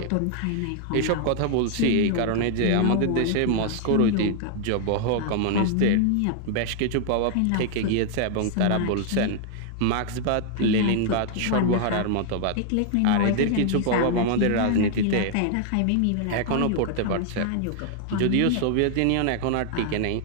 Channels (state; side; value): different; both; correlation 0.00